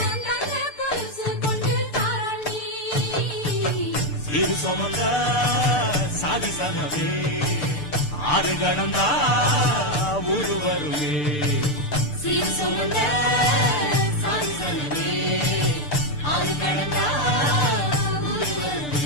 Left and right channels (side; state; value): right; late; 6.7 ms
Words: இரு சுமந்த சாதி சனவே ஆறு கடந்தா ஊரு வருமே சீர் சுமந்த சாதி சனவே ஆறு கடந்தா ஊரு